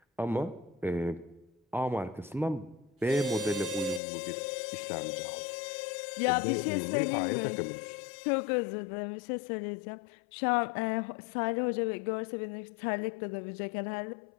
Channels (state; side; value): drops out; right; at 4.0 s